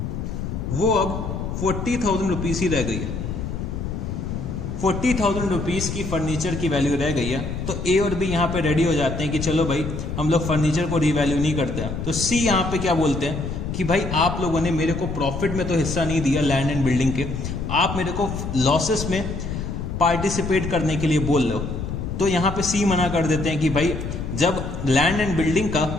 वो अब 40,000 रुपीज ही रह गई है। 40,000 रुपीज की फर्नीचर की वैल्यू रह गई है। तो ए और बी यहां पे रेडी हो जाते हैं कि चलो भाई हम लोग फर्नीचर को रीवैल्यू नहीं करते हैं। तो सी यहां पे क्या बोलते हैं कि भाई आप लोगों ने मेरे को प्रॉफिट में तो हिस्सा नहीं दिया लैंड एंड बिल्डिंग के, आप मेरे को लॉसेस में पार्टिसिपेट करने के लिए बोल रहे हो। तो यहां पे सी मना कर देते हैं कि भाई जब लैंड एंड बिल्डिंग का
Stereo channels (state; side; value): noise; left; rumble, 5 dB below the sound